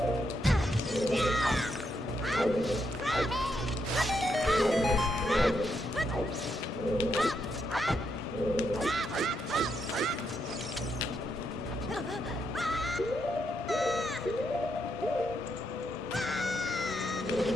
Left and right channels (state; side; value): normal; both; correlation 0.80